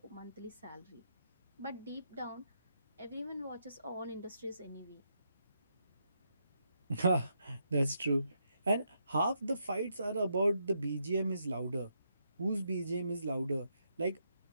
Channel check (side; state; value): both; inverted; correlation -0.80